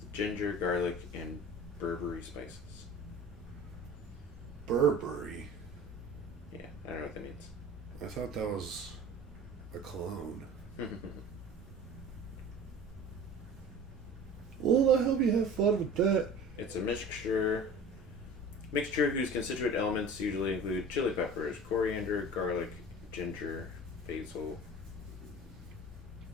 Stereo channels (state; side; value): normal; both; correlation 0.40